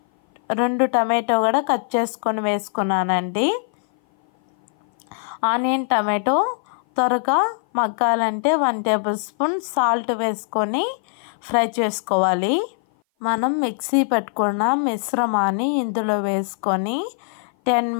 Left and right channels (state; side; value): silent; right; 57 dB below the other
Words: 2 టమాటో కూడా కట్ చేసుకొని వేసుకున్నానండి. ఆనియన్ టమాటో త్వరగా మగ్గాలంటే 1 టేబుల్ స్పూన్ సాల్ట్ వేసుకొని ఫ్రై చేసుకోవాలి. మనం మిక్సీ పెట్టుకున్న మిశ్రమాన్ని ఇందులో వేసుకొని 10